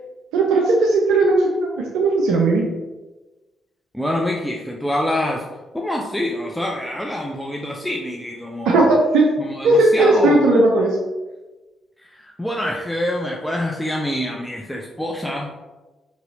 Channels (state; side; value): normal; both; correlation 0.71